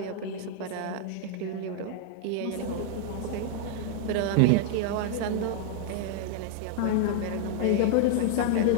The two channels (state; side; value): different; both; correlation 0.00